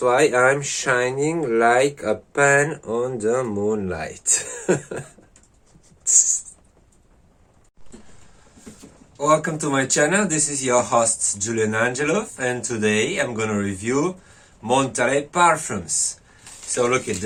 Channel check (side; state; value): both; identical; correlation 1.00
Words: I'm shining like a pan on the moonlight. Welcome to my channel. This is your host Julian Angelov, and today I'm gonna review Montalais parfums. So look at